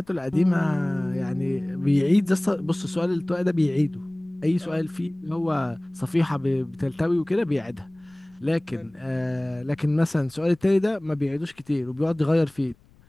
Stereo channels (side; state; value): left; noise; rumble, 30 dB below the sound